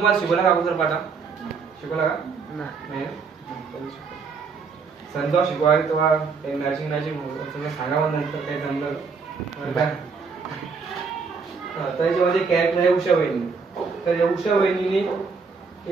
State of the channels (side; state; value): left; quieter; 5.1 dB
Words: शिकवला का अगोदर पाठा? शिकवला का? नाही. सण जेव्हा शिकवायला तेव्हा नर्सिंग सांगावं नंतर काही जमलं. त्याच्यामध्ये कॅरेक्टर आहे उषा वहिनी. तर या उषा वहिनीने